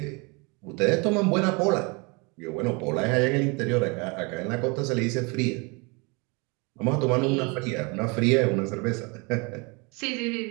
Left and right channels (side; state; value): left; quieter; 29.6 dB